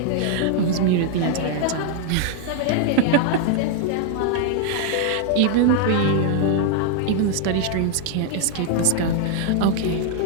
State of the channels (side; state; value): both; different; correlation 0.00